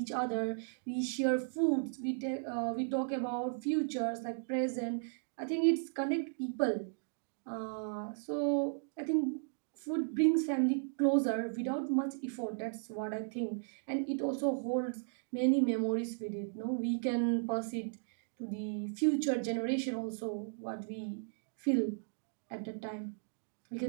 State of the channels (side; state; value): left; silent; digital silence